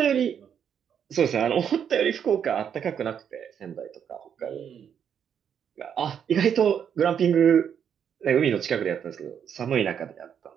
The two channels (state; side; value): quieter; left; 8.2 dB